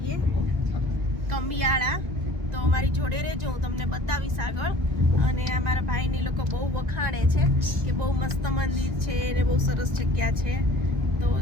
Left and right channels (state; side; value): late; left; 2.1 ms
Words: કંબિયાળા. તો અમારી જોડે રહેજો, હું તમને બતાવીશ આગળ. અને અમારા ભાઈને લોકો બહુ વખાણે છે કે બહુ મસ્ત મંદિર છે અને બહુ સરસ જગ્યા છે. તો